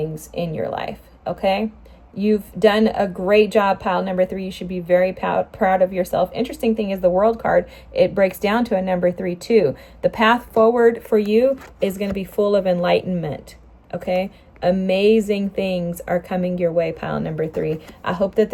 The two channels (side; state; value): both; identical; correlation 1.00